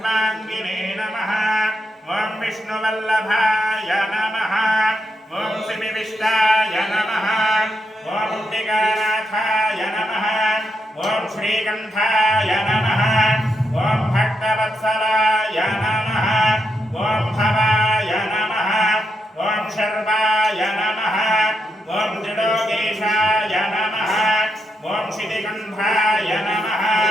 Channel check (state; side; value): normal; both; correlation 0.83